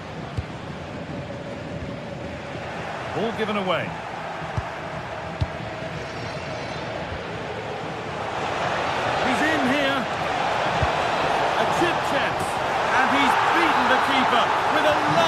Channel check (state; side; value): identical; both; correlation 1.00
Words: Ball given away. He's in here. A chip chance. And he's beaten the keeper with a